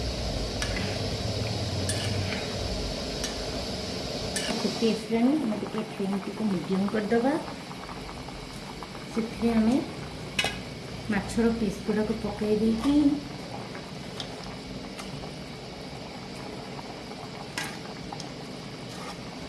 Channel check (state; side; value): identical; both; correlation 1.00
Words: ଫୁଟି ଆସିଲାଣି, ଆମେ ଟିକେ ଫ୍ଲେମ୍ଟିକୁ ମିଡ଼ିୟମ୍ କରିଦେବା। ସେଥିରେ ଆମେ ମାଛର ପିସ୍ ଗୁଡ଼ାକୁ ପକାଇ ଦେଇକି